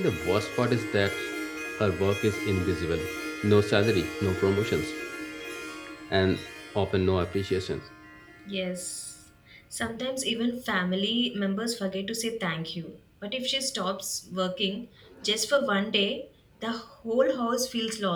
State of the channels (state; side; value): identical; both; correlation 1.00